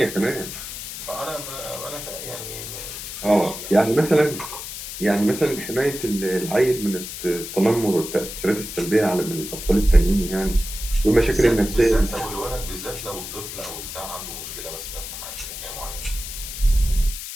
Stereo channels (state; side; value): noise; left; hiss, 9 dB below the sound